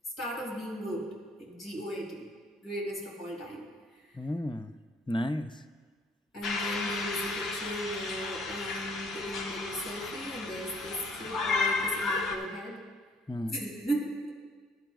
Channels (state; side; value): normal; both; correlation 0.61